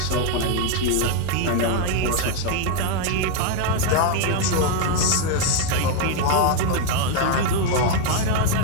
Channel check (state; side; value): different; both; correlation 0.00